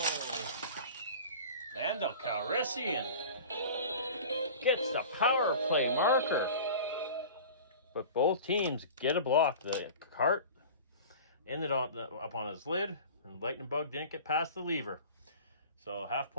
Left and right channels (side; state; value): both; inverted; correlation -0.38